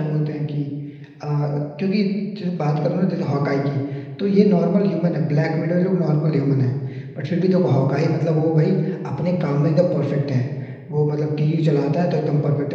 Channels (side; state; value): both; identical; correlation 1.00